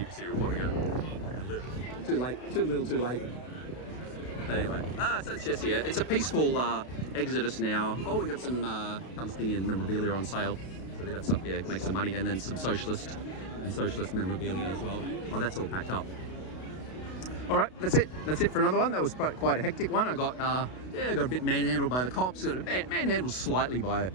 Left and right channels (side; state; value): right; late; 32 ms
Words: reporter go? Too late. Too little. Too late. Anyway, so it's just here. It's a peaceful exodus now. Oh, we got some Palestinian memorabilia on sale. So they got some, make some money, and then some socialist memorabilia as well. Oh, that's all packed up. All right, that's it. That's it for another one. That was quite a hectic one. I got a bit manhandled by the cops. Got manhandled slightly by